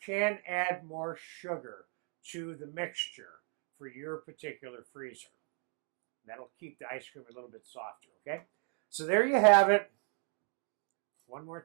add more sugar to the mixture for your particular freezer. That'll keep the ice cream a little bit softer, okay? So there you have it. One more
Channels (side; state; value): left; quieter; 33.3 dB